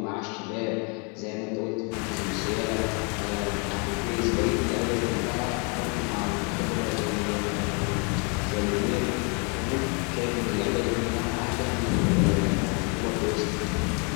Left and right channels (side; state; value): right; quieter; 35.0 dB